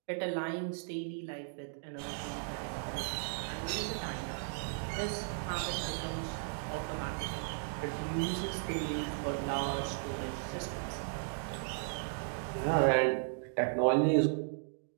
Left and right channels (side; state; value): left; silent; digital silence